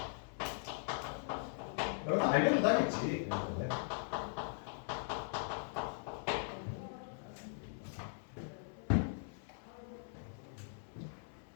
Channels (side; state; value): right; silent; 51 dB below the other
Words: 여러분 알려도 하겠지.